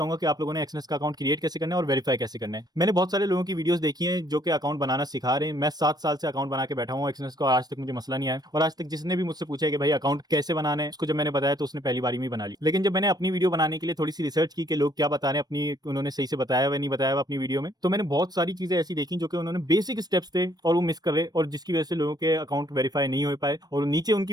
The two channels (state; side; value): late; left; 0.19 ms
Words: कि आप लोगों ने एक्सनेस का अकाउंट क्रिएट कैसे करना है और वेरीफाई कैसे करना है। मैंने बहुत सारे लोगों की वीडियोस देखी हैं जो कि अकाउंट बनाना सिखा रहे हैं। मैं 7 साल से अकाउंट बना के बैठा हूँ एक्सनेस का, आज तक मुझे मसला नहीं आया। और आज तक जिसने भी मुझसे पूछा है कि भाई अकाउंट कैसे बनाना है, उसको जब मैंने बताया तो उसने पहली बारी में बना ली। लेकिन जब मैंने अपनी वीडियो बनाने के लिए थोड़ी सी रिसर्च की कि लोग क्या बता रहे हैं, अपनी उन्होंने सही से बताया हुआ नहीं बताया हुआ अपनी वीडियो में, तो मैंने बहुत सारी चीजें ऐसी देखी जो कि उन्होंने बेसिक स्टेप्स थे और वो मिस कर रहे, और जिसकी वजह से लोगों के अकाउंट वेरीफाई नहीं हो पाए। और नीचे उनकी